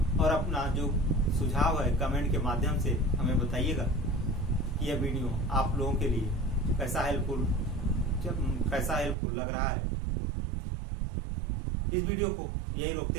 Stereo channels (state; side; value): drops out; left; at 9.2 s